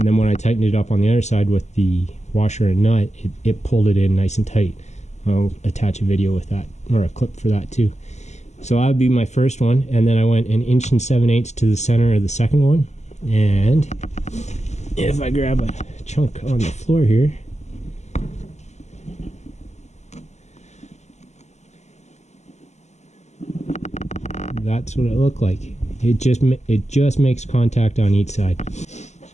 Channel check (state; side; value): late; right; 0.33 ms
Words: then when I tightened it up on the other side with the washer and nut, it pulled it in nice and tight. I'll attach a video with that, or a clip for that too. So that would be my first one, and then I went 1 7/8 inches to the center of the second one. And if I grab a chunk on the floor here, that's what it looked like. It just makes contact on each side.